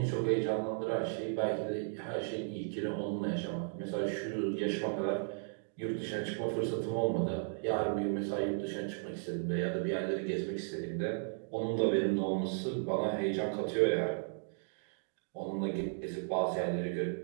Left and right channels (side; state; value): left; silent; digital silence